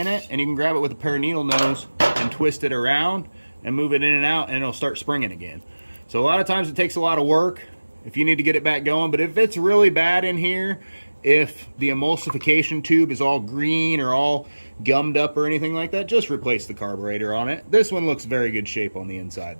it and you can grab it with a pair of needle nose and twist it around. and move it in and out, and it'll start springing again. So a lot of times it takes a lot of work if you need to get it back going, but if it's really bad in here, if the emulsification tube is all green or all gummed up or anything like that, just replace the carburetor on it. This one looks very good shape on the inside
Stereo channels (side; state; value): both; inverted; correlation -1.00